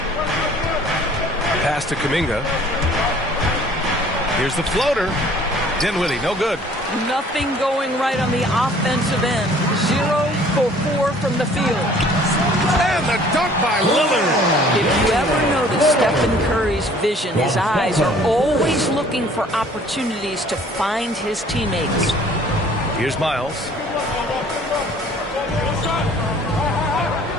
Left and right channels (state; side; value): normal; both; correlation 0.54